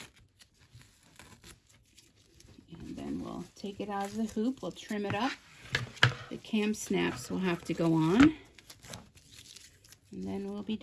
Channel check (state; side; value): identical; both; correlation 1.00